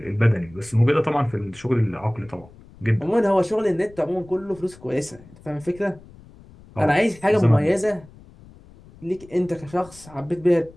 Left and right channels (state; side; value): noise; left; rumble, 23 dB below the sound